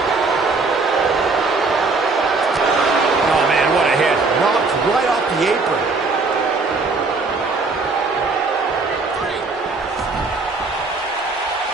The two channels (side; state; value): left; quieter; 3.9 dB